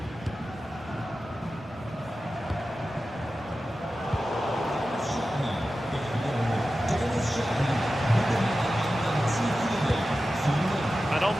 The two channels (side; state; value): both; normal; correlation 0.93